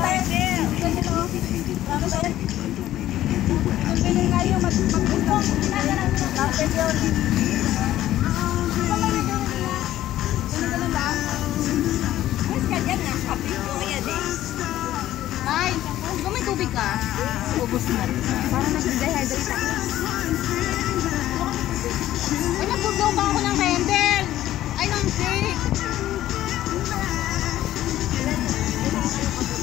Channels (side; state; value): right; quieter; 13.6 dB